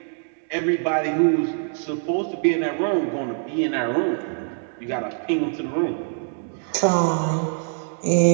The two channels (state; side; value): silent; left; digital silence